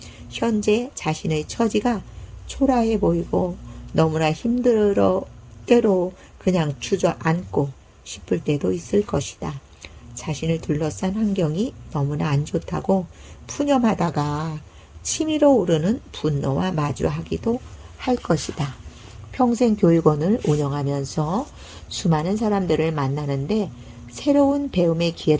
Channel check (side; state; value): both; identical; correlation 1.00